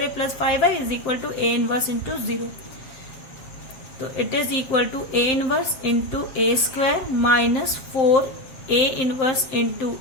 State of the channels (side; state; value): right; late; 7.7 ms